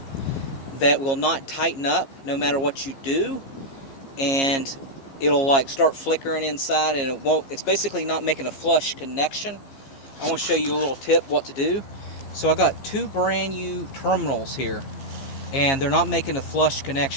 that will not tighten up no matter what you do, and it'll like start flickering inside and it's basically not making a flush connection, I want to show you a little tip what to do. So I got two brand new terminals here and they're not making a flush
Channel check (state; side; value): late; right; 15 ms